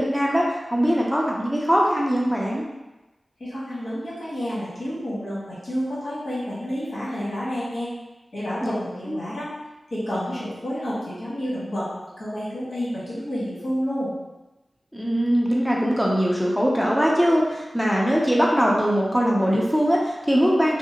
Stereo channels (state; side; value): normal; both; correlation 0.97